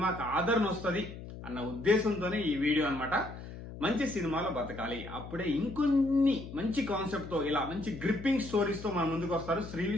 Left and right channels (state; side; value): noise; left; hum, 12 dB below the sound